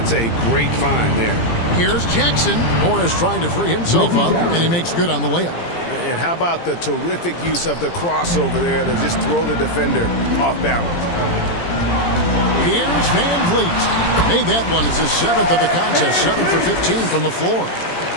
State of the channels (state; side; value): late; right; 17 ms